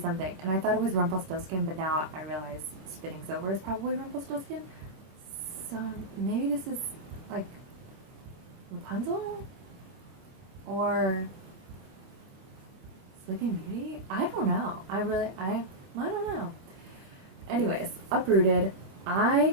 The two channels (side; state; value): left; late; 26 ms